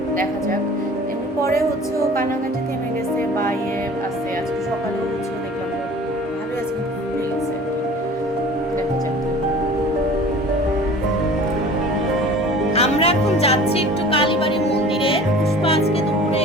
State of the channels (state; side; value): normal; both; correlation 0.44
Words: দেখা যাক। এমনি পরে ও কান্নাকাটি থেমে গেছে বা আছে। আজকে সকালেও দেখলাম ভালোই আছে, কিন্তু খুলে গেছে। দেখা যাক। আমরা এখন যাচ্ছি একটু কালীবাড়ি মন্দিরে। পুষ্পা আজকে দুপুরে